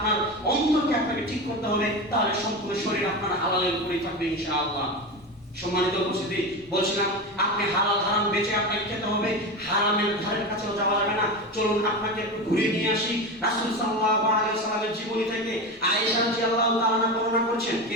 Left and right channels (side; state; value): both; normal; correlation 0.22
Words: অন্তরকে আপনাকে ঠিক করতে হবে, তাহলে সম্পূর্ণ শরীর আপনার হালালের উপরেই থাকবে ইনশাআল্লাহ। সম্মানিত উপস্থিতি, বলছিলাম আপনি হালাল হারাম বেঁচে আপনাকে খেতে হবে, হারামের ধারের কাছেও যাওয়া যাবে না। চলুন আপনাকে একটু ঘুরিয়ে নিয়ে আসি রাসূল সাল্লাল্লাহু আলাইহি ওয়াসাল্লামের জীবনী থেকে। আয়েশা রাদিয়াল্লাহু তাআলা বর্ণনা করছেন।